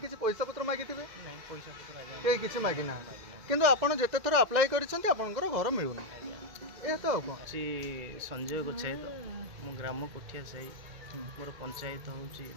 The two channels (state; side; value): late; left; 2.0 ms